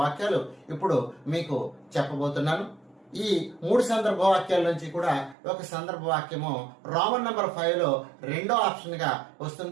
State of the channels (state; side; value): drops out; left; at 5.4 s